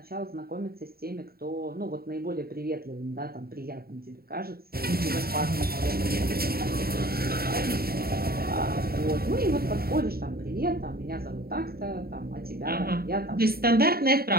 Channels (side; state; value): left; late; 0.44 ms